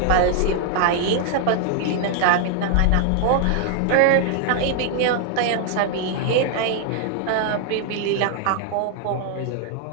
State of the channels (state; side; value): different; both; correlation 0.00